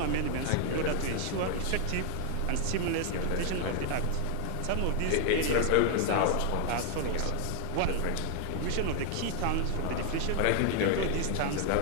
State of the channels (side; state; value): both; different; correlation 0.00